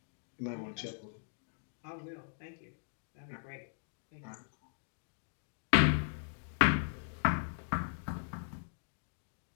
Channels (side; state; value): right; silent; digital silence